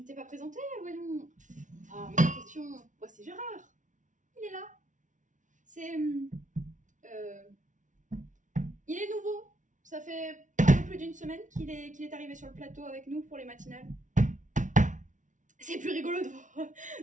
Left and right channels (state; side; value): late; left; 0.37 ms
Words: t'es pas présenté, voyons. Ah, mais question. Ouais, c'est Gérard. Il est là. C'est. Il est nouveau. Ça fait un peu plus d'une semaine qu'il est arrivé sur le plateau avec nous pour les matinales. C'est plus rigolo